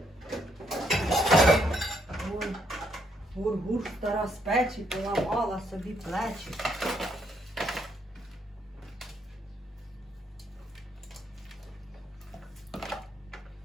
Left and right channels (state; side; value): normal; both; correlation 0.74